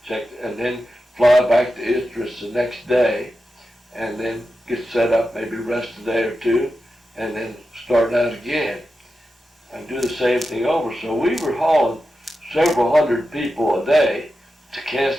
checked, and then fly back to Idris the next day, and then get set up, maybe rest a day or two, and then start out again and do the same thing over. So we were hauling several hundred people a day to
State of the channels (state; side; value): normal; both; correlation 0.91